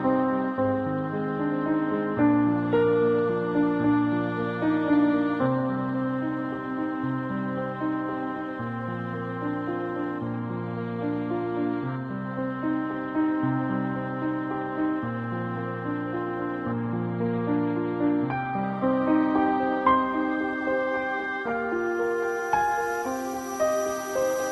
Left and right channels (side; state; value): both; identical; correlation 1.00